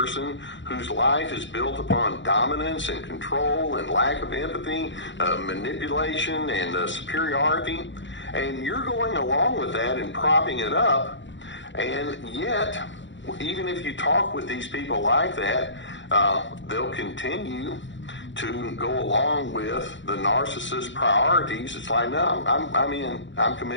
whose life is built upon dominance and control and lack of empathy, manipulation and superiority. And you're going along with that and propping it up. And yet, even if you talk with these people like that, they'll continue to go along with the narcissist's priorities. It's like, no, I'm in. I'm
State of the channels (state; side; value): late; right; 0.54 ms